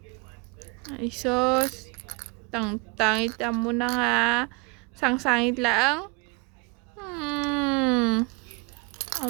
Ay, sos. Tangit mo na nga. Sangsangit lang.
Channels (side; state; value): left; quieter; 29.9 dB